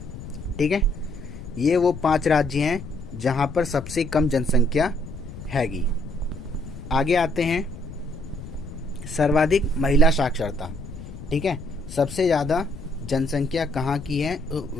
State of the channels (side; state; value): left; noise; rumble, 12 dB below the sound